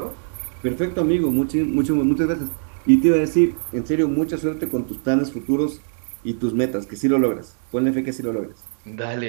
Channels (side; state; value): left; silent; digital silence